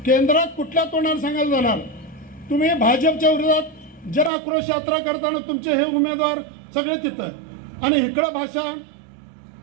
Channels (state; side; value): drops out; left; at 4.3 s